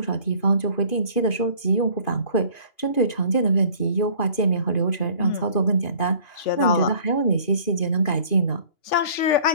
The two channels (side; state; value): right; late; 2.5 ms